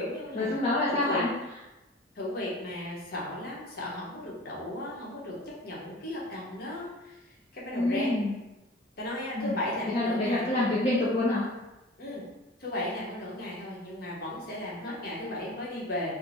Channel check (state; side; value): normal; both; correlation 0.39